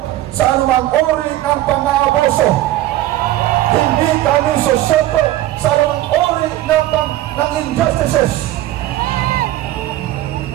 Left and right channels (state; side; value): quieter; left; 15.0 dB